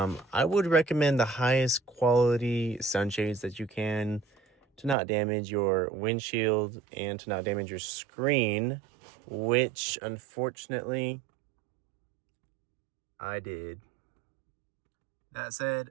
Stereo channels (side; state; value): left; drops out; at 5.0 s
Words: would recommend the highest quality sunshades that you can, to not damage your windshield and to not damage your screen, which unfortunately I did. That said,